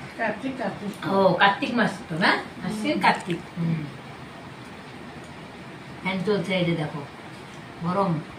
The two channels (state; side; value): identical; both; correlation 1.00